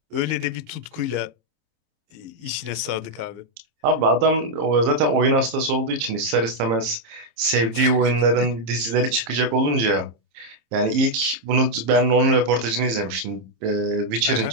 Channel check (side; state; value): left; late; 27 ms